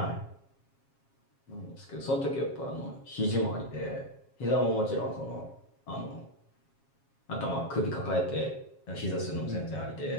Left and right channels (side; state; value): right; late; 7.3 ms